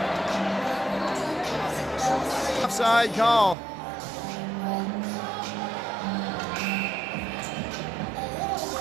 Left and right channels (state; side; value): drops out; left; at 3.6 s